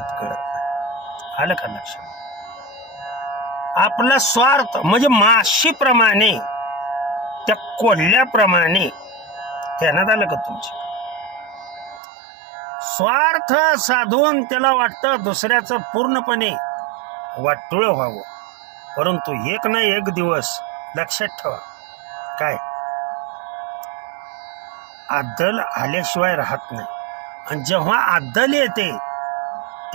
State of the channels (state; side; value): drops out; left; at 12.0 s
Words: कळत नाही. आलं का लक्षात? आपला स्वार्थ म्हणजे माशीप्रमाणे, त्या कोल्ह्याप्रमाणे. ध्यानात आलं का तुमच्या? स्वार्थ साधून त्याला वाटतं दुसऱ्याचं पूर्णपणे वाटोळ व्हावं, परंतु एक ना एक दिवस लक्षात ठेवा, काय आदल आल्याशिवाय राहत नाही. आणि जेव्हा आदल येते